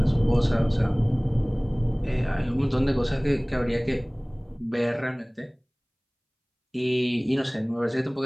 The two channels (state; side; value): identical; both; correlation 1.00